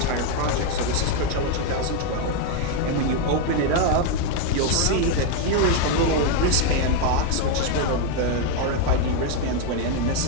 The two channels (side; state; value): both; different; correlation 0.01